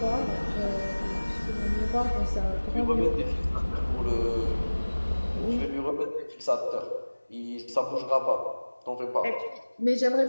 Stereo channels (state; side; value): inverted; both; correlation -1.00